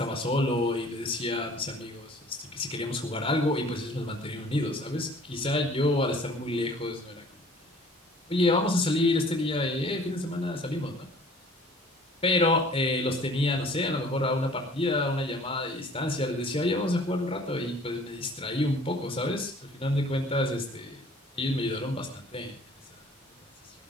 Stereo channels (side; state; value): both; normal; correlation 0.52